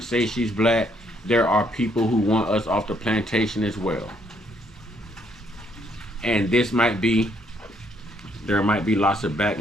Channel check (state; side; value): normal; both; correlation 0.70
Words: say she's black. There are people who want us off the plantation as well. And this might be, there might be lots of